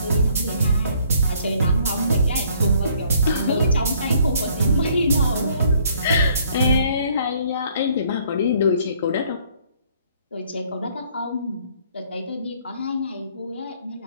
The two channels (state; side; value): inverted; both; correlation -0.62